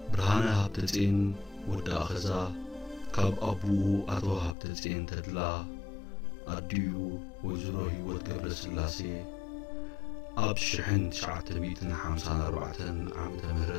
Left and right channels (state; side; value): drops out; right; at 4.5 s